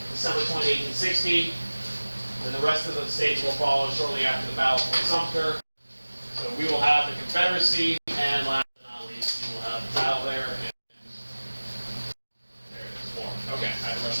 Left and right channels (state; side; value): inverted; both; correlation -1.00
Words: December 20, 1860. And the rest of the states will follow shortly after the Battle of Fort Sumter. So we will have the Confederacy, and last but not least, we will have the battle there. And there it is, war. Okay, I had to